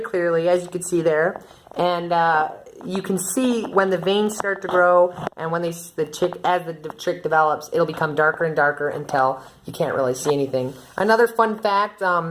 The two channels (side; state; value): both; identical; correlation 1.00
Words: clearly, as you can see there, and you can see when the veins start to grow, and when as the chick develops, it'll become darker and darker until you can't really see anything. Another fun fact: